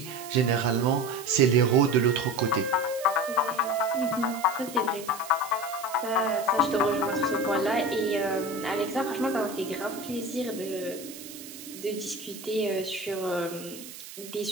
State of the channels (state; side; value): noise; right; hiss, 14 dB below the sound